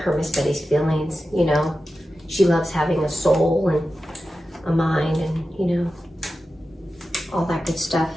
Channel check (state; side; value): normal; both; correlation 0.92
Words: Miss Betty's feelings, you know. She loves having a soul and a mind and, you know, all that good stuff.